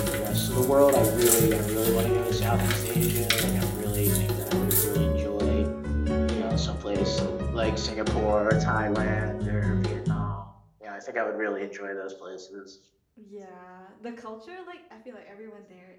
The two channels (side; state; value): both; identical; correlation 1.00